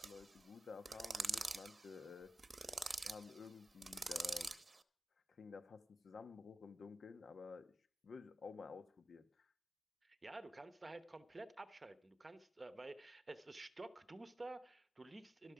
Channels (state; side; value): normal; both; correlation 0.93